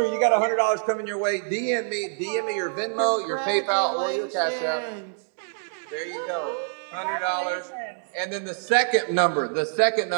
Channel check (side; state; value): left; silent; digital silence